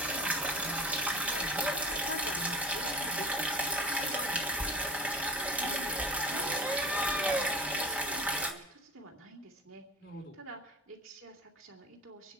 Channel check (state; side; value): normal; both; correlation 0.36